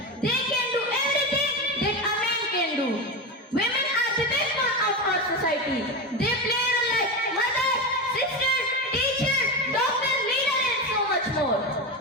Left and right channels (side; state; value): both; normal; correlation 0.18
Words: They can do everything that a man can do. Women are the backbone of our society. They play a role like mother, sister, teacher, doctor, leader and so much more.